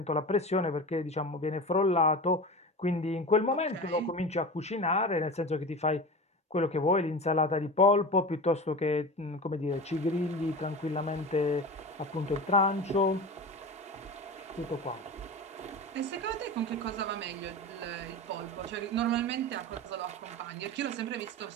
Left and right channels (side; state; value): both; normal; correlation 0.29